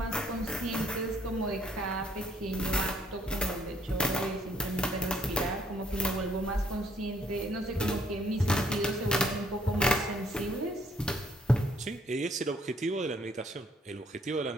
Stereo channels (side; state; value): both; normal; correlation 0.67